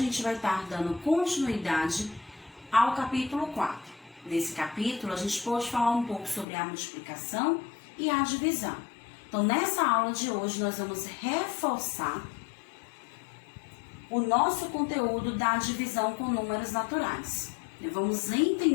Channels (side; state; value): right; drops out; at 6.5 s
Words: gente vai estar dando continuidade ao capítulo 4. Nesse capítulo a gente pode falar um pouco sobre a multiplicação e a divisão. Então nessa aula de hoje nós vamos reforçar o nosso conteúdo da divisão com números naturais. Vamos